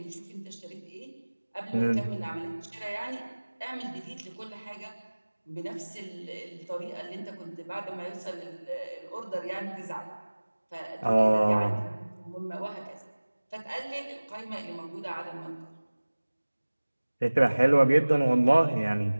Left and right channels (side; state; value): both; inverted; correlation -1.00